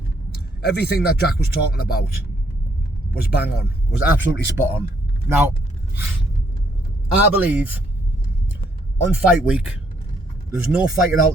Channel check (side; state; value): both; normal; correlation 0.70